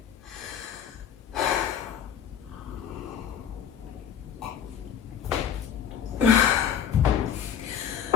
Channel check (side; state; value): right; quieter; 8.5 dB